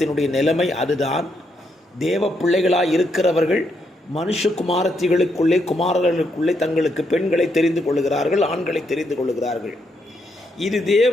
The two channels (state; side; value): normal; both; correlation 0.78